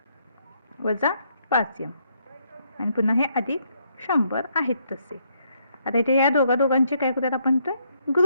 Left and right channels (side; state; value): both; inverted; correlation -0.73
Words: वजा 5m आणि पुन्हा हे अधिक 100 आहेत तसे. आता इथे या दोघांचे काय करूयात आपण, तर